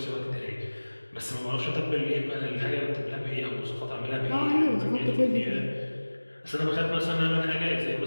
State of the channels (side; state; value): both; inverted; correlation -1.00